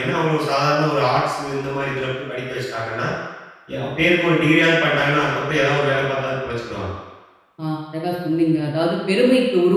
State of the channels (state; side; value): identical; both; correlation 1.00